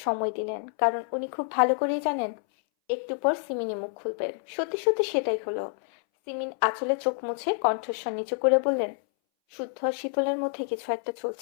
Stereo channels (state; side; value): silent; right; 59 dB below the other